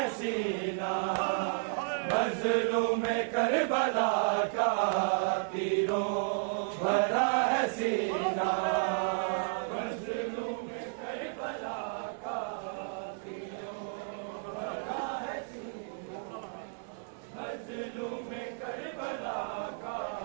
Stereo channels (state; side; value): silent; left; digital silence